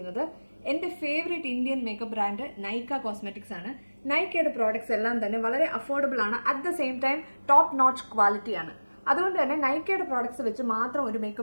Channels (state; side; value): inverted; both; correlation -1.00